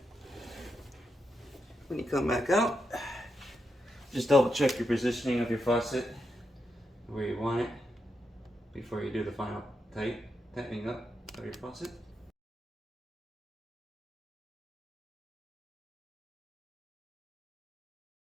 when you come back out, just double check your positioning of your faucet where you want it before you do the final tightening up of your faucet.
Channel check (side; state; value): both; normal; correlation 0.85